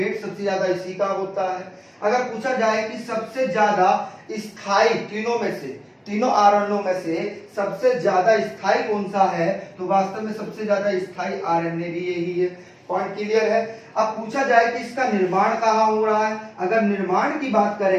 सबसे ज्यादा इसी का होता है। अगर पूछा जाए कि सबसे ज्यादा स्थायी तीनों आरएनए में से सबसे ज्यादा स्थायी कौन सा है, तो वास्तव में सबसे ज्यादा स्थायी आरएनए भी यही है। पॉइंट क्लियर है। अब पूछा जाए कि इसका निर्माण कहाँ हो रहा है, अगर निर्माण की बात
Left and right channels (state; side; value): identical; both; correlation 1.00